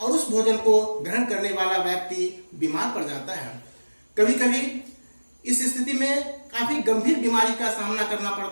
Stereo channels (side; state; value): both; inverted; correlation -1.00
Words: उस भोजन को ग्रहण करने वाला व्यक्ति बीमार पड़ जाता है। कभी कभी इस स्थिति में काफी गंभीर बीमारी का सामना करना